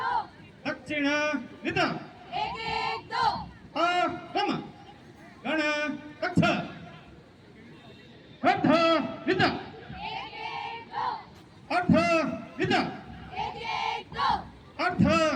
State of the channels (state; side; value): identical; both; correlation 1.00